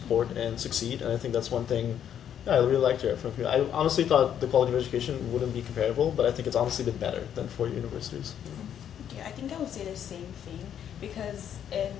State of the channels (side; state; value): right; quieter; 9.4 dB